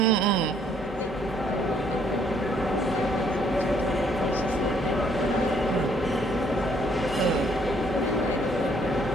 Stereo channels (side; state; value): both; normal; correlation 0.66